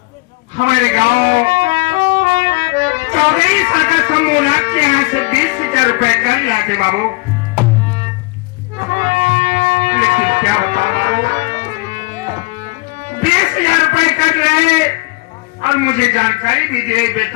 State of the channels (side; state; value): right; quieter; 24.5 dB